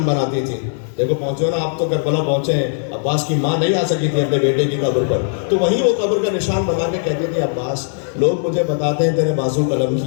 بناتی تھی. دیکھو پہنچے ہو نا آپ تو کربلا پہنچے ہیں. عباس کی ماں نہیں آ سکی تھی اپنے بیٹے کی قبر پر، تو وہیں وہ قبر کا نشان بنا کے کہتی تھی عباس لوگ مجھے بتاتے ہیں تیرے بازو قلم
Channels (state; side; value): silent; right; 59 dB below the other